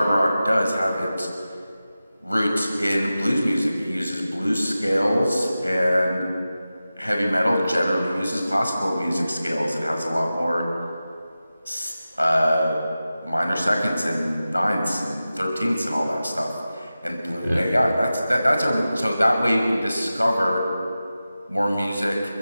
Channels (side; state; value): both; inverted; correlation -0.94